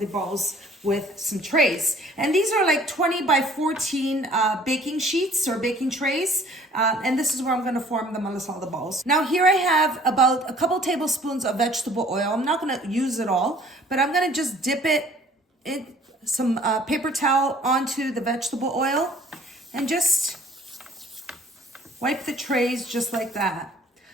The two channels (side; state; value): both; normal; correlation 0.54